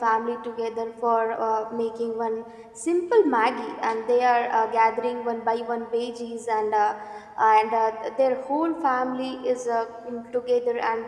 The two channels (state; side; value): identical; both; correlation 1.00